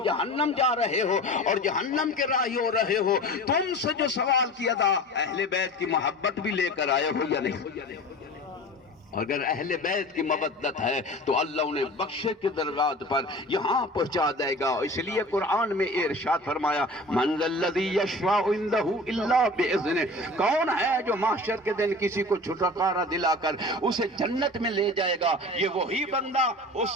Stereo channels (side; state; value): both; normal; correlation 0.37